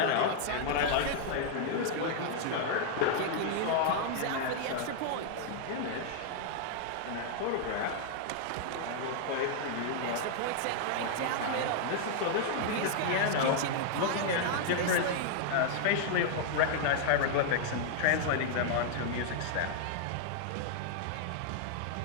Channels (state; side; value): different; both; correlation -0.01